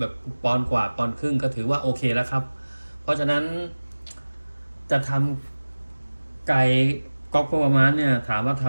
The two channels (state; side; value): inverted; both; correlation -1.00